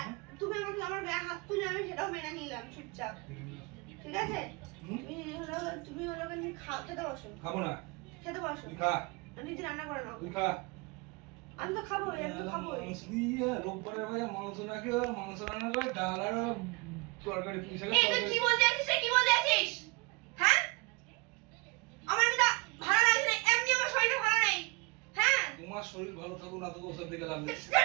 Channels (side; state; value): left; quieter; 28.7 dB